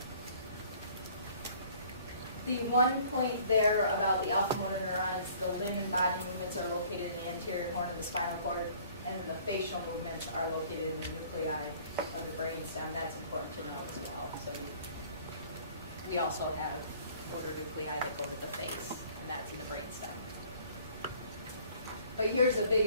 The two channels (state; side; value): inverted; both; correlation -0.54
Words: know? The one point there about the alpha motor neurons, the limb and body movements are located in the anterior horn of the spinal cord, and then the facial movements are located in the nuclei of the brainstem. That's important to know as well. So we also have motor nuclei that go to the face, and that's in the brainstem. But here's a big